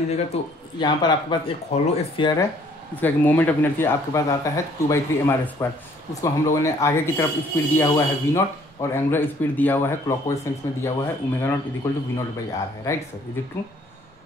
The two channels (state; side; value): normal; both; correlation 0.60